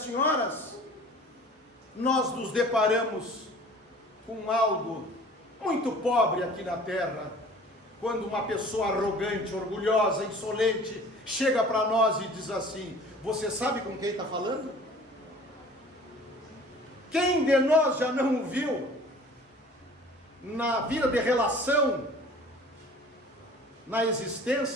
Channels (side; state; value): both; normal; correlation 0.46